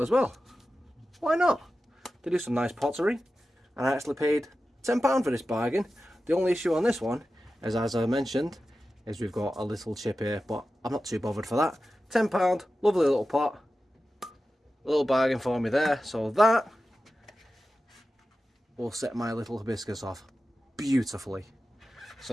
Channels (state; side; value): normal; both; correlation 0.93